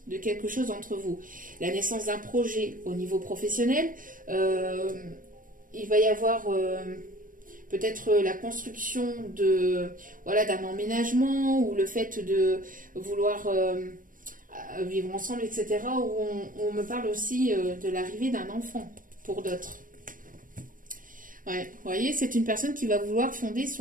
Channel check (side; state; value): left; late; 0.39 ms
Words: de quelque chose entre vous. La naissance d'un projet au niveau professionnel. Il va y avoir... peut-être la construction d'un emménagement, ou le fait de vouloir vivre ensemble, etc. Où on me parle aussi de l'arrivée d'un enfant pour d'autres. Ouais, vous voyez, c'est une personne qui va vouloir fonder